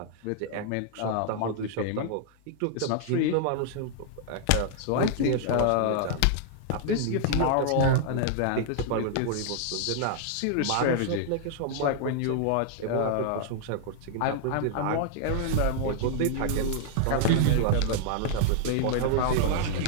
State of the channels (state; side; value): different; both; correlation -0.01